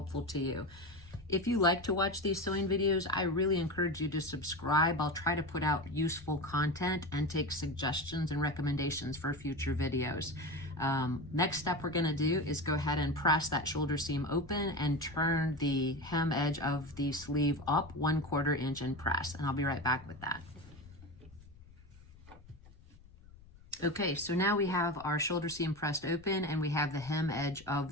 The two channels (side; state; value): left; noise; rumble, 22 dB below the sound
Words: to you. If you like to watch these sewing videos, I really encourage you to subscribe. I'll try to put out useful content and take suggestions and recommendations for future videos. Next step we're going to do is go ahead and press that shoulder seam open and turn the hem edge of the sleeve up 1/4 inch and press, and I'll be right back with that. Okay, so now we have our shoulder seam pressed open and we have the hem edge